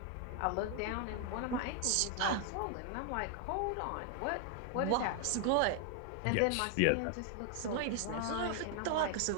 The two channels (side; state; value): both; different; correlation 0.00